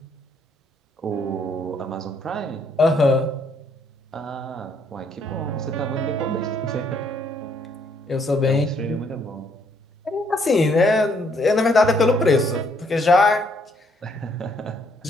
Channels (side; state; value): both; normal; correlation 0.69